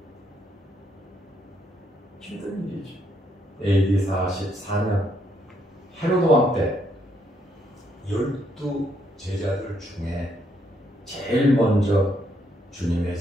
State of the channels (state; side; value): normal; both; correlation 0.73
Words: 힘든 일이죠. AD 44년 헤로드 왕 때 12 제자들 중에 제일 먼저 주님의